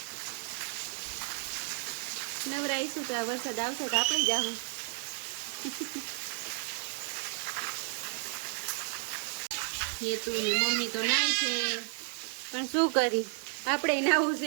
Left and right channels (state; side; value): silent; left; 56 dB below the other